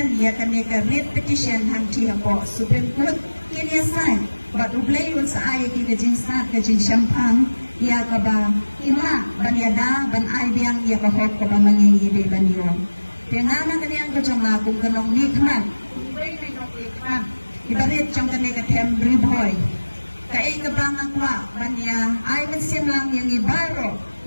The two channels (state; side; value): inverted; both; correlation -1.00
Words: ya kami ka writ petition hanti hapo Supreme Court kini asai but ublay un sa ay ki kajing start kajing champagne ya ka ba ima banyada ban ay biang ya ka hok ka ba mangingi ban yo tena kami ang kajong kung kanong nikman ublay na nikman ibarit jong kami ka temporary boy Kaya kabangan kwa banya ay mensim lang yang ibaro